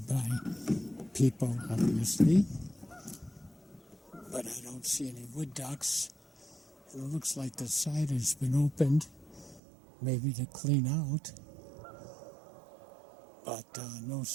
by people obviously, but I don't see any wood ducks, and it looks like the side has been opened, maybe to clean out, but no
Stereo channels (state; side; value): drops out; left; at 9.6 s